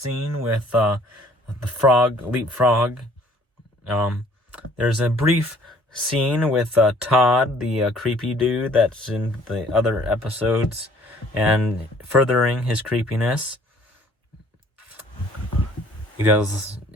with the Leapfrog, there's a brief scene with Todd, the creepy dude that's in the other episodes, and furthering his creepiness. He does,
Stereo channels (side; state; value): both; normal; correlation 0.57